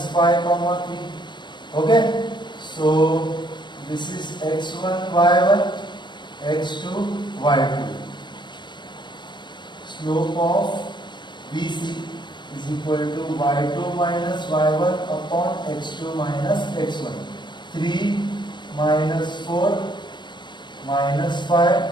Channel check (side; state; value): right; late; 0.22 ms